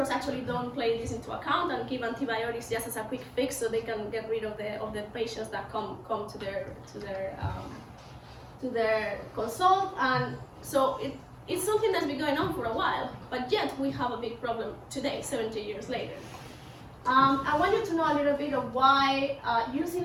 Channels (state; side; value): identical; both; correlation 1.00